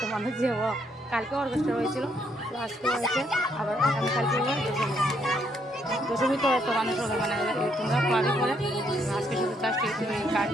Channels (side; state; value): both; normal; correlation 0.72